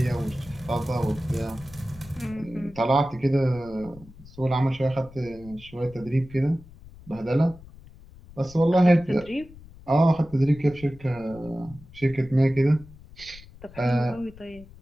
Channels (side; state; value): left; noise; rumble, 20 dB below the sound